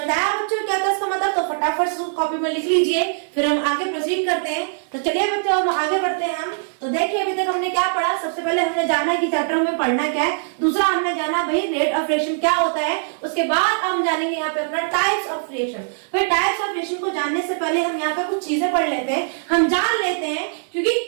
आया बच्चों क्या था इसका मतलब, तो फटाफट से कॉपी में लिख लीजिए, फिर हम आगे प्रोसीड करते हैं। तो चलिए बच्चों हम आगे बढ़ते हैं। हम तो देखिए अभी तक हमने क्या पढ़ा, सबसे पहले हमने जाना कि चैप्टर में पढ़ना क्या है, दूसरा हमने जाना भाई रेट ऑफ रिएक्शन क्या होता है, उसके बाद हम जानेंगे यहाँ पे अपना टाइप्स ऑफ रिएक्शन। फिर टाइप्स ऑफ रिएक्शन को जानने से पहले हम यहाँ पे कुछ चीजें पढ़ लेते हैं, हम जान लेते हैं, क्योंकि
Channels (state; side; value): silent; left; 65 dB below the other